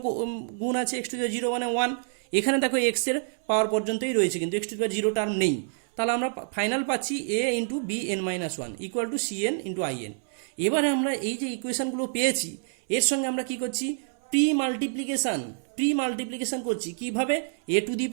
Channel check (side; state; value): left; silent; 60 dB below the other